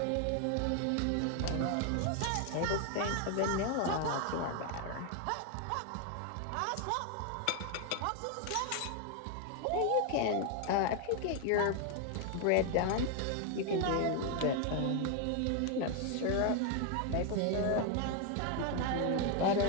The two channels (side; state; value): both; different; correlation 0.00